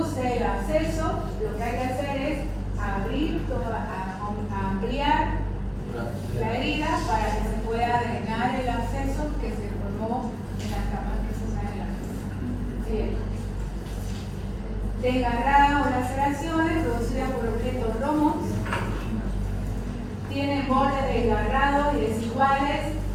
el absceso, lo que hay que hacer es abrir, ampliar la herida para que se pueda drenar el absceso que se formó en la cama profunda de la piel. Desgarrada o laceraciones producidas por objetos romos, tienen bordes desgarrados y desiguales,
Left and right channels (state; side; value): identical; both; correlation 1.00